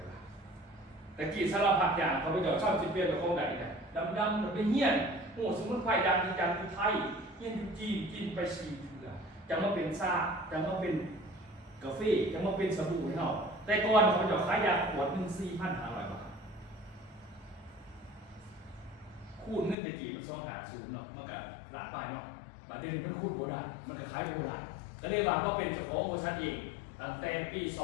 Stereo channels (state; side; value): drops out; right; at 19.8 s